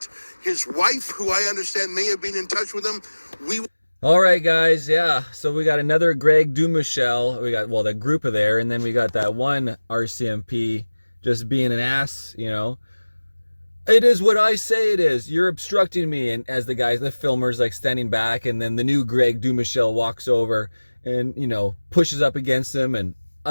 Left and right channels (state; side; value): inverted; both; correlation -1.00